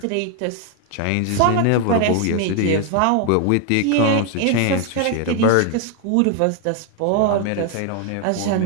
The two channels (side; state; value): both; different; correlation 0.01